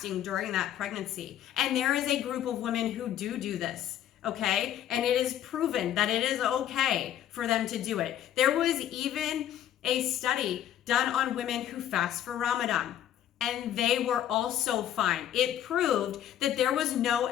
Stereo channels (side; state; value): right; quieter; 11.1 dB